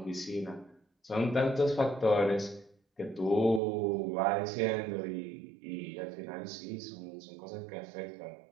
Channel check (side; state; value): left; drops out; at 3.6 s